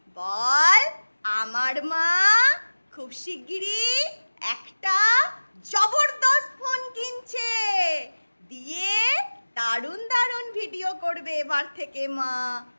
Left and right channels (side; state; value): both; inverted; correlation -1.00